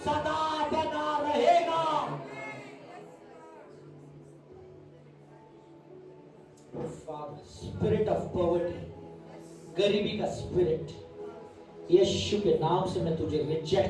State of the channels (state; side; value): identical; both; correlation 1.00